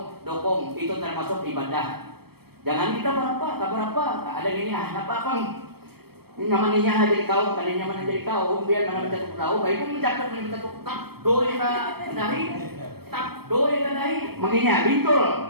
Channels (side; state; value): left; late; 0.96 ms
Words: dokong itu termasuk ibadah. Jangan kita berapa, ada ini apa. Nyamannya jadi kaum, kali nyaman jadi kaum, biar mana mencatuk tahu, baik pun mencatuk tak doi ka dahi, tak doi ka dahi, menginya bintul,